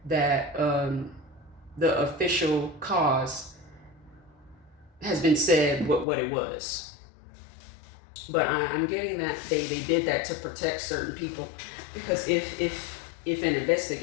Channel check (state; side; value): drops out; right; at 6.1 s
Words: that the official cause has been said what it was. But I'm getting that they did that to protect certain people, because if an